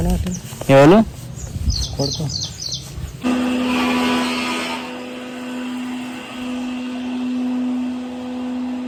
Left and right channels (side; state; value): both; identical; correlation 1.00